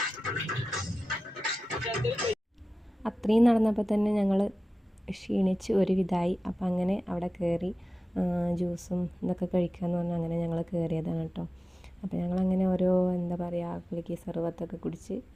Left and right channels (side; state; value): both; normal; correlation 0.95